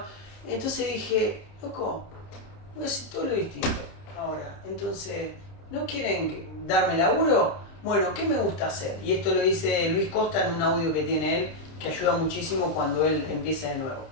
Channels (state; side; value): late; right; 30 ms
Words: Entonces dije, loco, voy a hacer todo lo distinto ahora. Entonces, ¿no quieren darme laburo? Bueno, ¿qué me gusta hacer? Y esto lo dice Luis Costa en un audio que tiene él, que ayuda muchísimo cuando él empieza de nuevo.